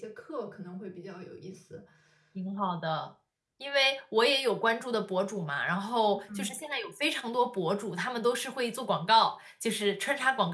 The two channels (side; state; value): both; identical; correlation 1.00